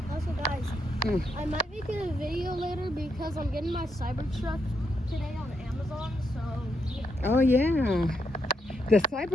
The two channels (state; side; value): normal; both; correlation 0.80